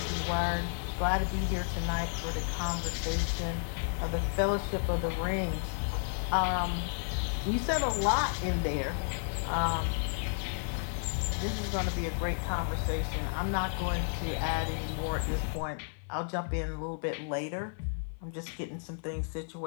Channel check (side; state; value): right; silent; 56 dB below the other